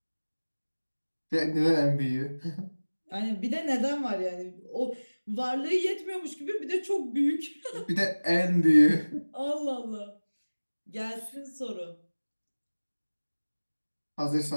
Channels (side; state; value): both; inverted; correlation -1.00